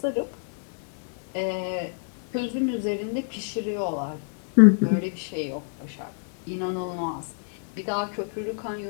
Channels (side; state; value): right; silent; digital silence